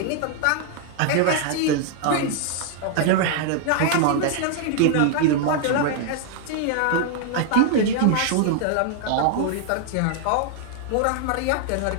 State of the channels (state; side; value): different; both; correlation 0.00